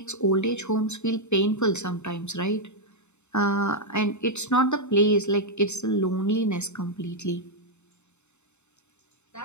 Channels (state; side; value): late; right; 0.82 ms